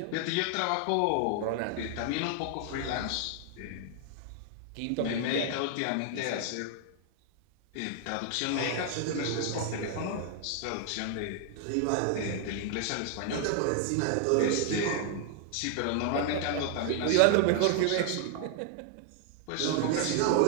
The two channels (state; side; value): different; both; correlation 0.00